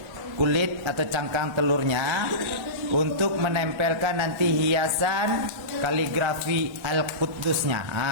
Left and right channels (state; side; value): late; left; 1.3 ms